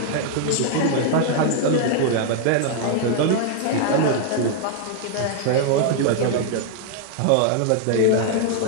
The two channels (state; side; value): different; both; correlation 0.00